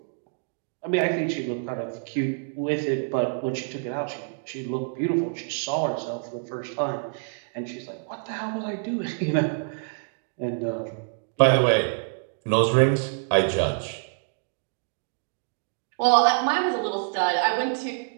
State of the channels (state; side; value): silent; left; 60 dB below the other